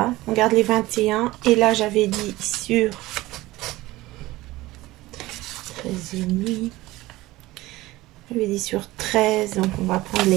On garde les 21. Et là, j'avais dit sur 13,5. J'avais dit sur 13. Donc, on va prendre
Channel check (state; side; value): quieter; left; 18.5 dB